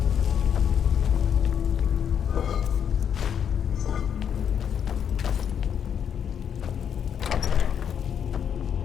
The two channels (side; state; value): right; quieter; 8.2 dB